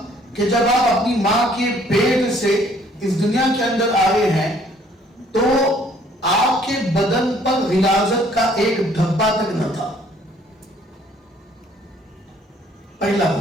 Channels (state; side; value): normal; both; correlation 0.60